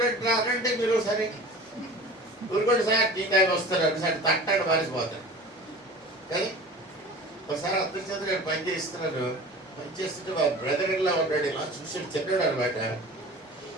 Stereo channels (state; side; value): normal; both; correlation 0.39